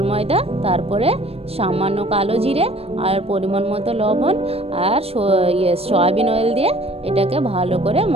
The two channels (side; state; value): left; late; 0.29 ms